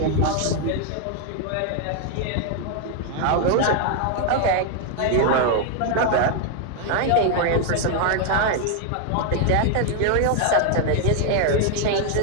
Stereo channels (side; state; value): both; different; correlation 0.00